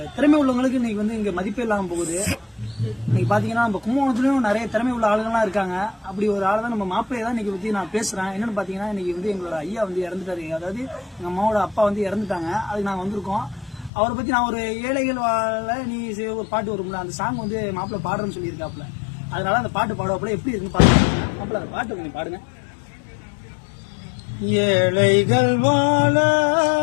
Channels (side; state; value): right; drops out; at 13.9 s